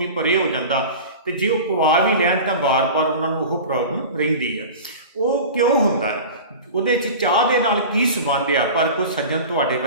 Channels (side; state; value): both; inverted; correlation -0.34